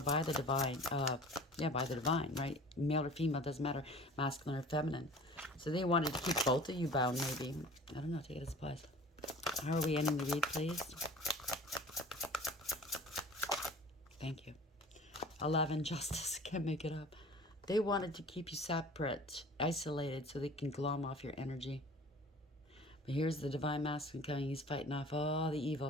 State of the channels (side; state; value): both; normal; correlation 0.44